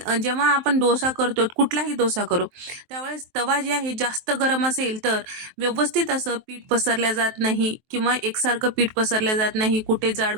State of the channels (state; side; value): late; left; 23 ms